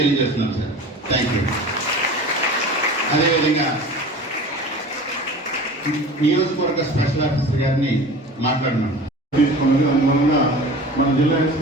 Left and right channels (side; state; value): both; normal; correlation 0.38